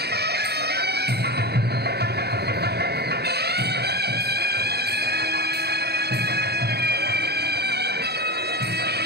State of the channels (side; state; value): left; late; 0.47 ms